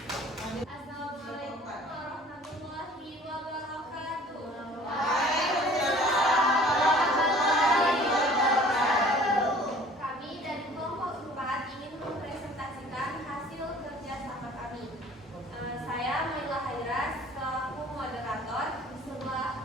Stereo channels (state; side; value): normal; both; correlation 0.50